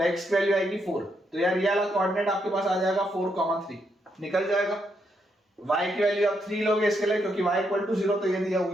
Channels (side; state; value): both; normal; correlation 0.78